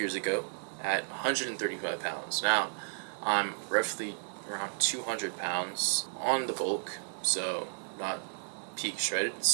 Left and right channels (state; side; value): silent; left; digital silence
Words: ago at 135 pounds. Now, I'm roughly around 200 pounds on the bulk, so not peak shredded,